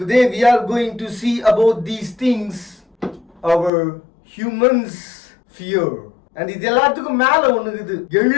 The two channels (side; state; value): right; drops out; at 3.7 s